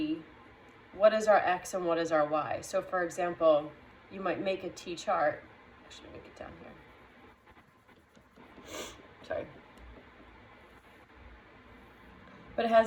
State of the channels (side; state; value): both; identical; correlation 1.00